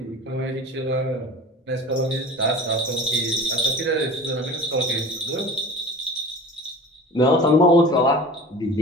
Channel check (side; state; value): both; normal; correlation 0.37